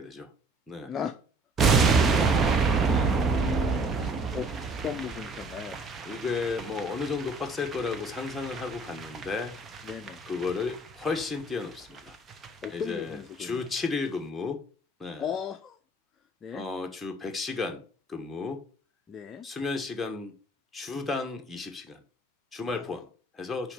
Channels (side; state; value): both; normal; correlation 0.55